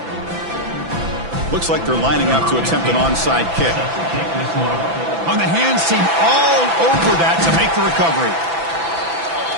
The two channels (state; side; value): late; left; 6.0 ms